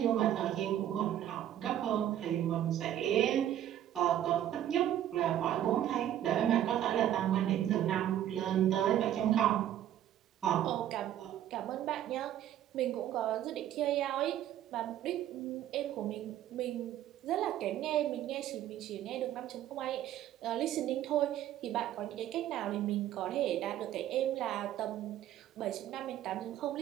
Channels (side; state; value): left; quieter; 11.6 dB